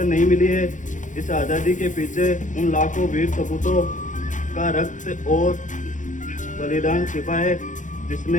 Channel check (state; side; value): late; right; 0.37 ms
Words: नहीं मिली है। इस आज़ादी के पीछे उन लाखों वीर सपूतों का रक्त और बलिदान छिपा है,